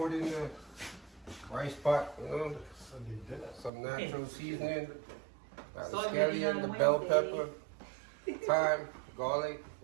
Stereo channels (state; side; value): drops out; left; at 3.7 s